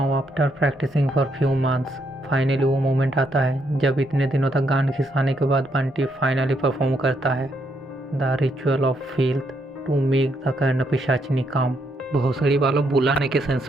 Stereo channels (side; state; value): both; normal; correlation 0.76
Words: after practising for few months, finally वो मोमेंट आता है जब इतने दिनों तक गान खिसाने के बाद बंटी फाइनली परफॉर्म करता है the ritual of field to make the Karna Pishachini come. भोसड़ी वालों बुलाने के सेंस